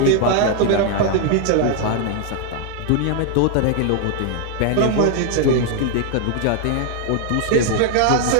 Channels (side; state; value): both; different; correlation 0.00